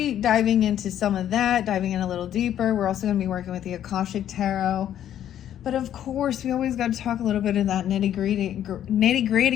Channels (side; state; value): right; quieter; 10.8 dB